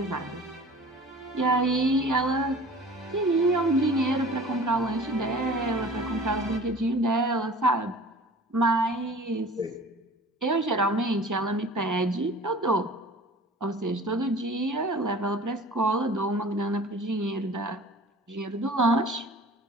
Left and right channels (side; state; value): both; normal; correlation 0.43